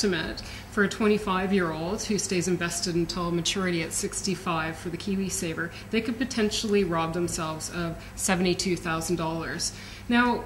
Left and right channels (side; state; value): both; identical; correlation 1.00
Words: for a 25-year-old who stays invested until maturity at 65 for the KiwiSaver, they could potentially rob themselves of $72,000. Now,